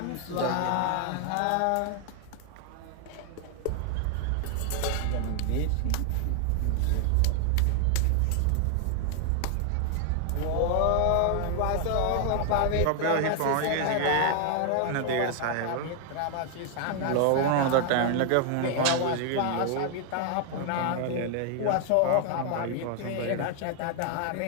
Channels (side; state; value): both; different; correlation 0.00